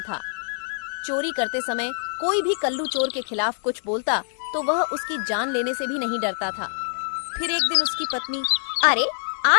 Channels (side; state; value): right; silent; digital silence